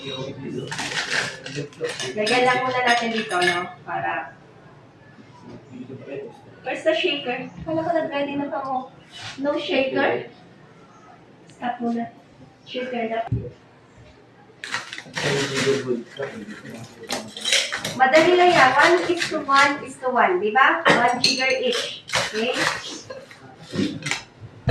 Lagyan lang muna natin dito, no? Para... Where's the shaker? Kala ko nag-ready na pa mo. No shaker? Stop muna. Shaker na. Madali lang yan. 1:1:1. Diba? 1 jigger each. Okay?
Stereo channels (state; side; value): identical; both; correlation 1.00